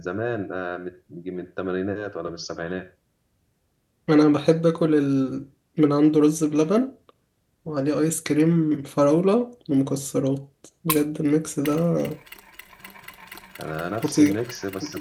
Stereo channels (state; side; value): identical; both; correlation 1.00